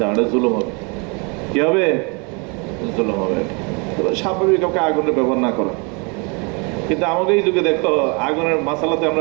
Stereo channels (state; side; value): quieter; left; 32.1 dB